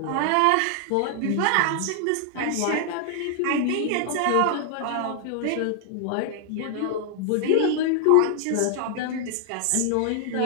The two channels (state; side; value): different; both; correlation 0.00